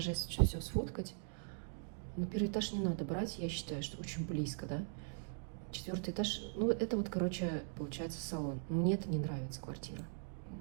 все сфоткать. Но 1-й этаж не надо брать, я считаю, что очень близко, да. 4-й этаж, ну, это вот, короче, получается салон. Мне это не нравится, квартира.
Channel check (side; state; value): left; silent; digital silence